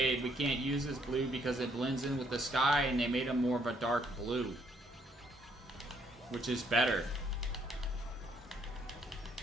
we can't use this blue because it blends in with the sky, and they made him more of a dark blue, which is better.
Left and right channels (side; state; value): both; normal; correlation 0.69